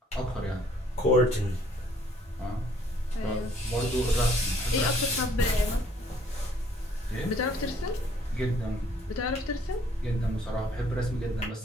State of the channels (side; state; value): both; normal; correlation 0.61